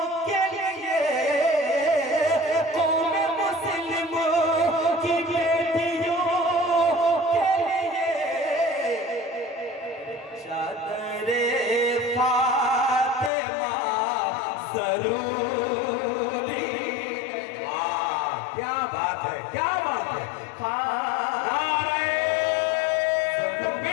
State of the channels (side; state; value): right; drops out; at 13.3 s